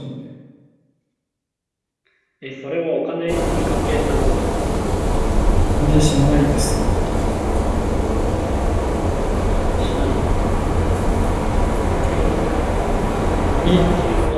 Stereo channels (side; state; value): both; identical; correlation 1.00